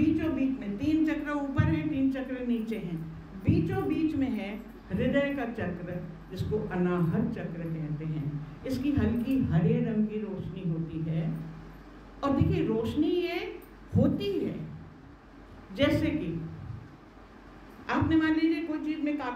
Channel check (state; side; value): identical; both; correlation 1.00